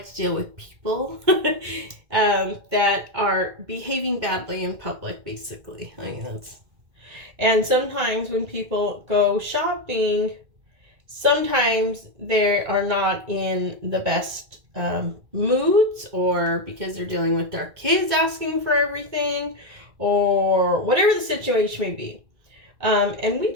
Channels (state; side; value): late; left; 2.1 ms